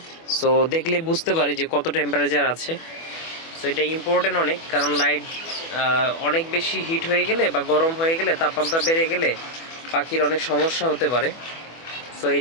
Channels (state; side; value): late; right; 24 ms